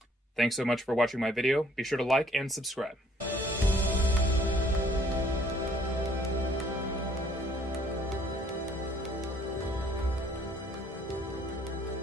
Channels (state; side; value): normal; both; correlation 0.61